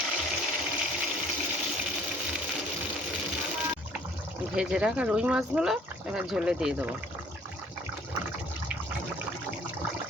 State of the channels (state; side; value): normal; both; correlation 0.56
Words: ভেজে রাখা রুই মাছগুলো এবার ঝোলে দিয়ে দেবো।